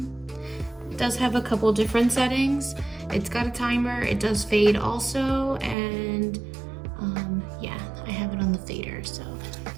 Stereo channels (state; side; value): drops out; left; at 5.8 s